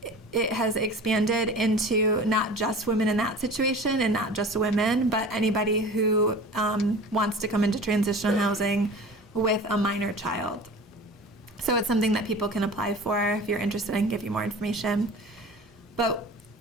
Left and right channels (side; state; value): both; normal; correlation 0.39